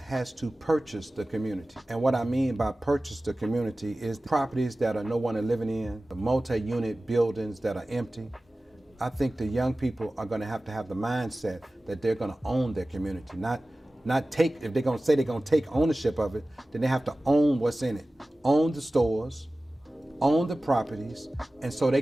to purchase the community. And what I mean by purchase the community is the properties that are no one is living in, the multi-unit buildings that are empty. I think the young people are going to have the mindset that they're going to own their community, not take, if they're going to say they're going to take ownership of it, then they have to own what's in it. Own the stores, own the properties, and so they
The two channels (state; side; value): normal; both; correlation 0.96